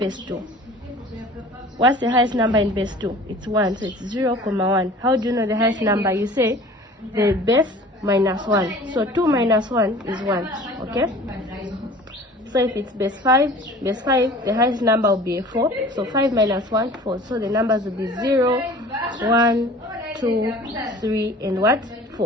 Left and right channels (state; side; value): normal; both; correlation 0.45